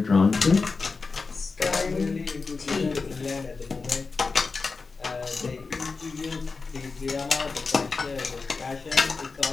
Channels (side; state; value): right; quieter; 4.4 dB